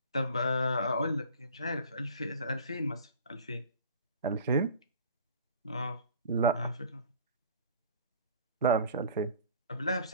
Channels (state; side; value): inverted; both; correlation -0.45